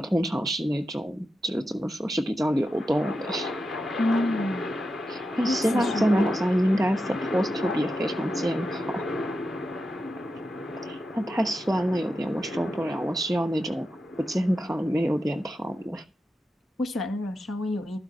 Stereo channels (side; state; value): both; normal; correlation 0.89